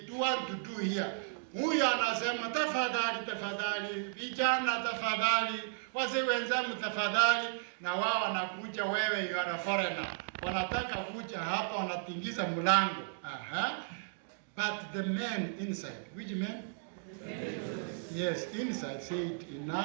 do want to do here. Huyu anasema tafadhali, vijana tafadhali, wazee wenzangu tafadhali, na wao wanakuja, wewe you are a foreigner. Wanataka kuja hapa, wanatingiza mlango. But the men inside, which men? Yes, inside said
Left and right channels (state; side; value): silent; left; digital silence